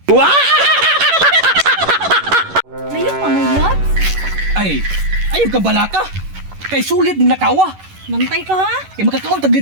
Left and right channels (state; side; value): late; left; 11 ms